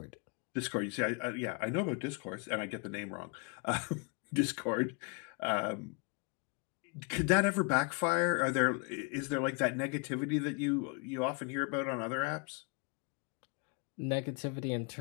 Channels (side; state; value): right; quieter; 34.0 dB